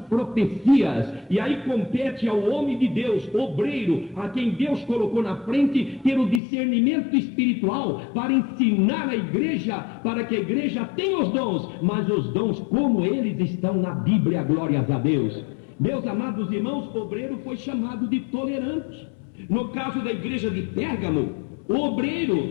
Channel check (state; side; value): drops out; right; at 6.4 s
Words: profecias, e aí compete ao homem de Deus, obreiro, a quem Deus colocou na frente, ter o discernimento espiritual para ensinar a igreja, para que a igreja tenha os dons, mas os dons como eles estão na Bíblia, glórias a Deus. Meus amados irmãos, o obreiro foi chamado de tolerante. No caso da igreja de Pérgamo, o